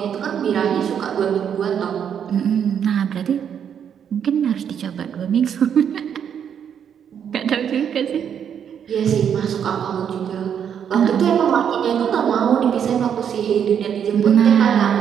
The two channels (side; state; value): left; quieter; 8.3 dB